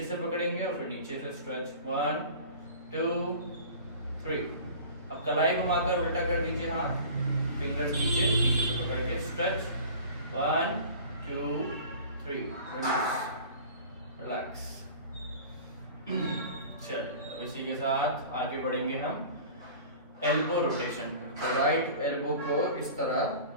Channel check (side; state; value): both; inverted; correlation -0.41